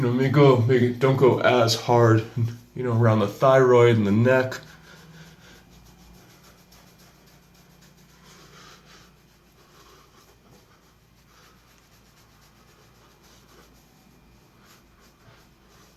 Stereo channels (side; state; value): both; identical; correlation 1.00